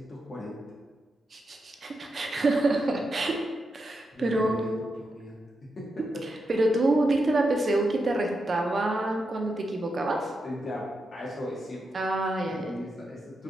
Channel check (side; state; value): both; normal; correlation 0.86